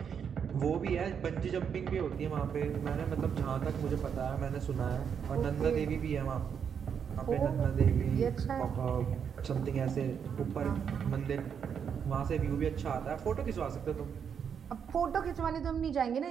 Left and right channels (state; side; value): quieter; left; 7.4 dB